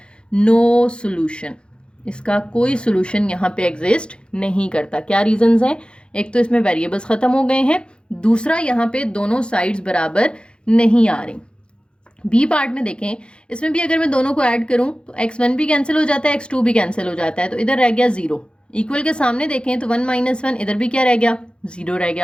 no solution, इसका कोई सोल्यूशन यहाँ पे एग्जिस्ट नहीं करता। क्या रीजंस हैं, एक तो इसमें वेरिएबल्स खत्म हो गए हैं, दूसरा यहाँ पे दोनों साइड्स बराबर नहीं आ रही। बी पार्ट में देखें, इसमें भी अगर मैं दोनों को ऐड करूं तो x1 भी कैंसिल हो जाता है, x2 भी कैंसिल हो जाता है, तो इधर रह गया 0। इक्वल के सामने देखें तो 1 -1, इधर भी क्या रह गया, 0 रह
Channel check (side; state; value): right; late; 0.054 ms